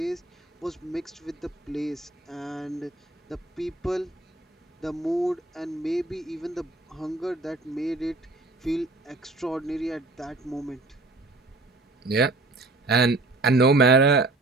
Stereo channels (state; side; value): quieter; left; 3.1 dB